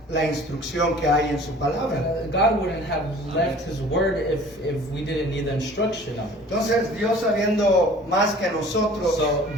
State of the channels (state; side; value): normal; both; correlation 0.48